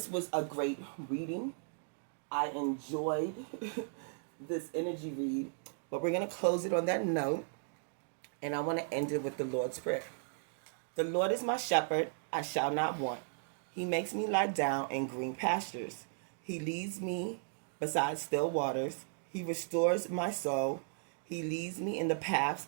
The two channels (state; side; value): silent; left; digital silence